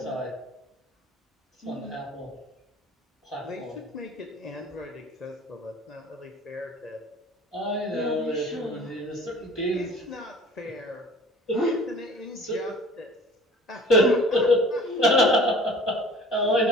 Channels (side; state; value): both; normal; correlation 0.46